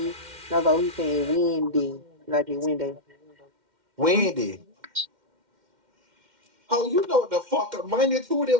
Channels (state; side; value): late; left; 2.1 ms